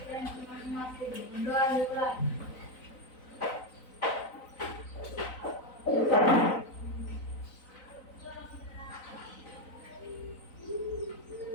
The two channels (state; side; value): late; right; 3.9 ms